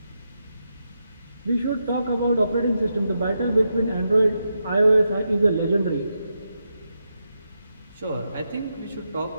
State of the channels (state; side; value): inverted; both; correlation -0.85